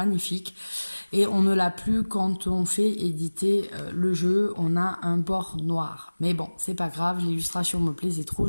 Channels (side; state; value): both; inverted; correlation -1.00